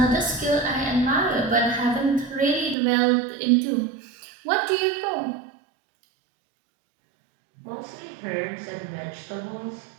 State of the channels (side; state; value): left; drops out; at 2.8 s